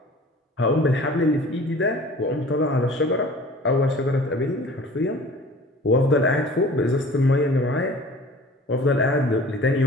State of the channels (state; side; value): normal; both; correlation 0.45